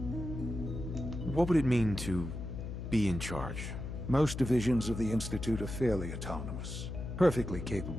What would it mean to be in charge? Most divisions of the Institute are fairly autonomous, perfectly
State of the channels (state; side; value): noise; left; hum, 6 dB below the sound